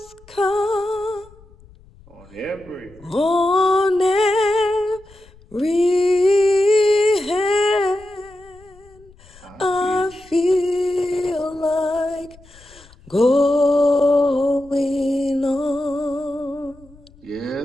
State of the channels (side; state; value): left; noise; rumble, 26 dB below the sound